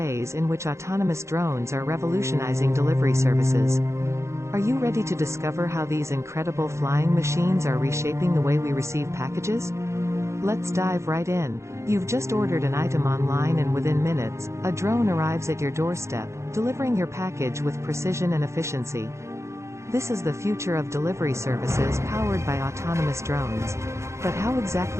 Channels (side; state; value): left; late; 0.14 ms